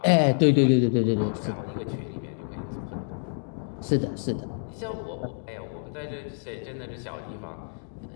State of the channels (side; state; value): right; silent; digital silence